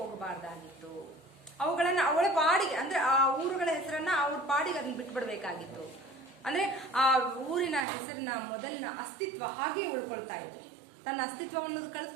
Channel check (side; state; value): left; drops out; at 7.9 s